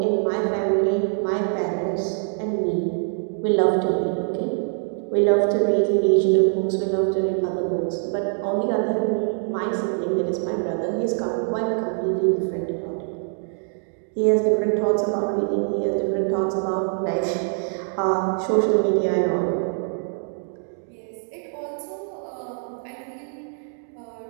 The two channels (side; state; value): left; silent; 63 dB below the other